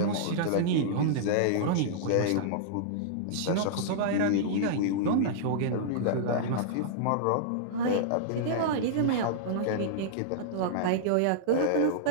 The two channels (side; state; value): both; different; correlation -0.02